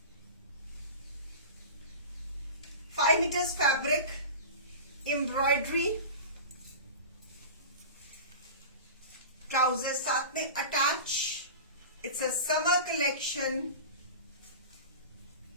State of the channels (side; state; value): both; inverted; correlation -0.31